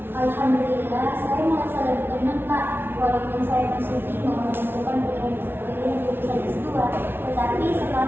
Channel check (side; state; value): left; late; 0.11 ms